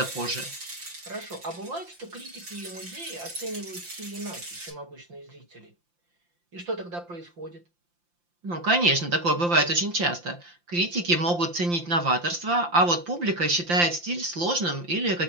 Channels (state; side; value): late; left; 5.8 ms